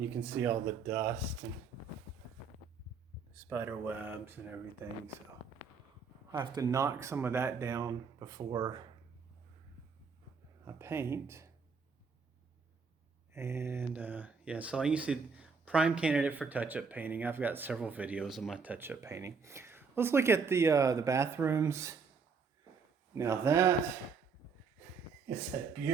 you can see all the dust and spider webs and everything. So I have to knock some of that down before I paint. And yeah, so you see, prime candidate for touch-up painting. I've got several videos of my touch-up painting. Let's look at the bathrooms. Now that is a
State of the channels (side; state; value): left; quieter; 5.4 dB